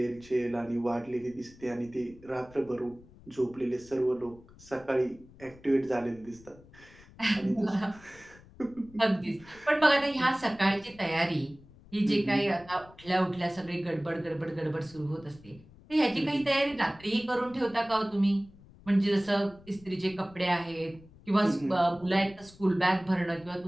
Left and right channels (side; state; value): left; noise; rumble, 23 dB below the sound